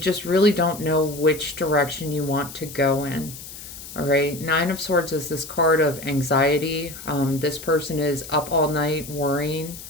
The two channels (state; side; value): noise; left; hiss, 13 dB below the sound